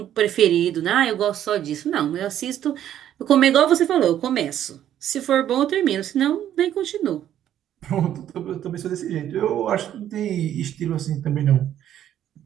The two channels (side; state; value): left; quieter; 11.0 dB